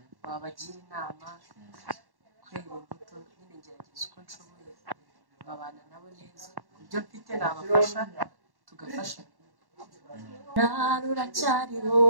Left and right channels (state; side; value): late; left; 1.1 ms